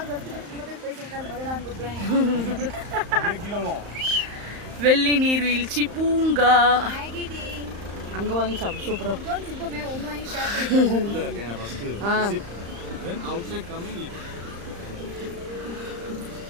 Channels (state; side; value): late; left; 35 ms